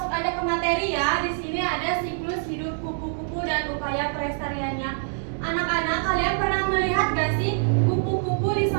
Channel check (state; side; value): silent; left; digital silence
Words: aja ke materi ya. Di sini ada siklus hidup kupu-kupu dan upaya pelestariannya. Anak-anak, kalian pernah melihat gak sih kupu-kupu di